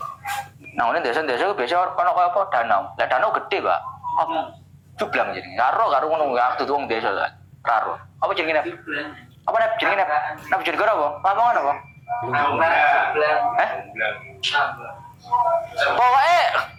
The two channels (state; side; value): identical; both; correlation 1.00